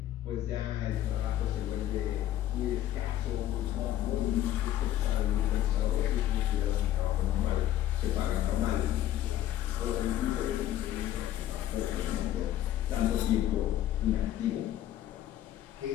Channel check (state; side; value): quieter; right; 12.6 dB